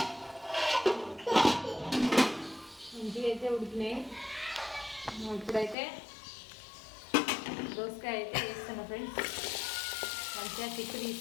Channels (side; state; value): right; drops out; at 5.8 s